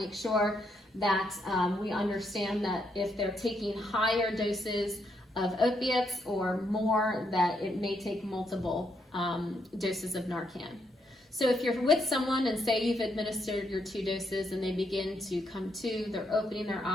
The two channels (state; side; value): normal; both; correlation 0.77